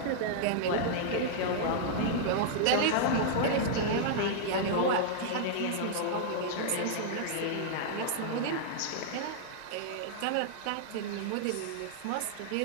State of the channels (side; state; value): both; different; correlation -0.01